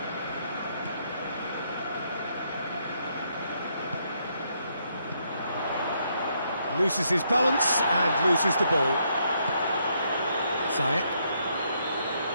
Loses his balance and loses the ball. Ziyech.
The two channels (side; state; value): both; inverted; correlation -0.74